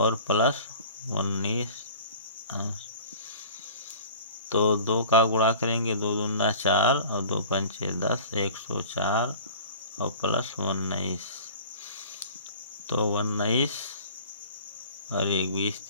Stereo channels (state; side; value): inverted; both; correlation -0.44